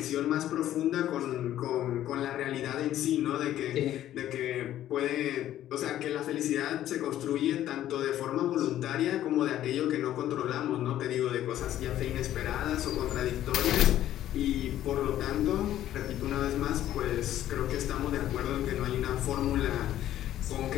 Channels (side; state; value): right; quieter; 12.5 dB